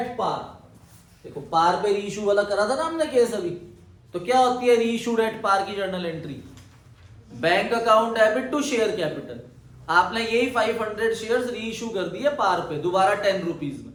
पार। देखो पार पे री इशू वाला करा था ना हमने केस अभी, तो क्या होती है री इशूड एट पार की journal entry, bank account debit to share capital. आपने यही 500 शेयर्स री इशू कर दिए पार पे दोबारा 10 रुपीज में।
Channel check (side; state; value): both; identical; correlation 1.00